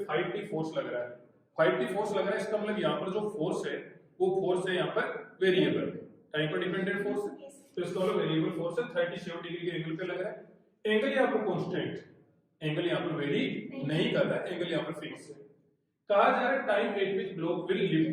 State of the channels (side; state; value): both; identical; correlation 1.00